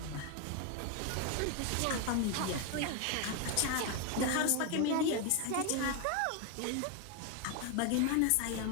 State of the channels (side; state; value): both; different; correlation 0.01